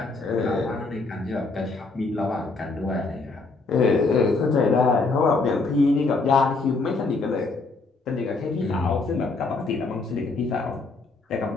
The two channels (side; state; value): right; quieter; 3.7 dB